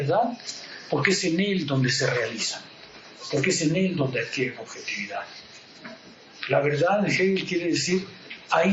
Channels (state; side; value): identical; both; correlation 1.00